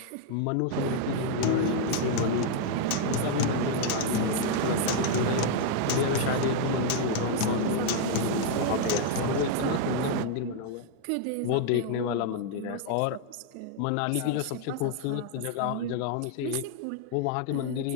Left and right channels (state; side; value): different; both; correlation 0.00